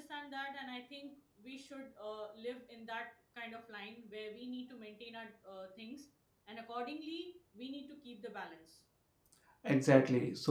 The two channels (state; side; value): identical; both; correlation 1.00